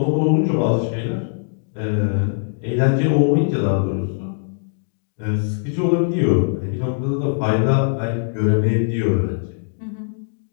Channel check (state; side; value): silent; right; digital silence